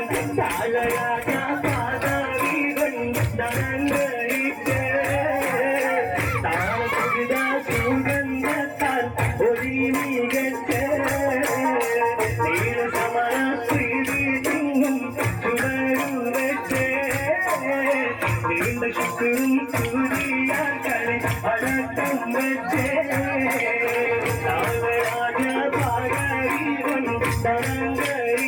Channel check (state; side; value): identical; both; correlation 1.00